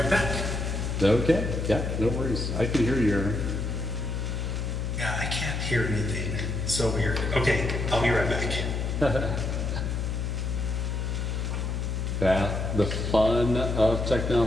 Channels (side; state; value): left; noise; hum, 1 dB below the sound